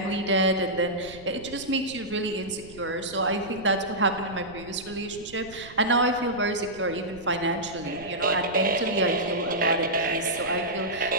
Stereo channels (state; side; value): noise; right; rumble, 19 dB below the sound